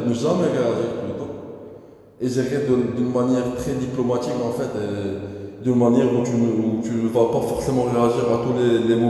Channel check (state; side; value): identical; both; correlation 1.00